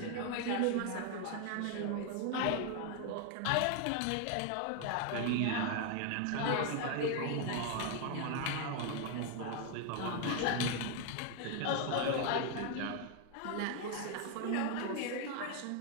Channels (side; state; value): both; different; correlation 0.01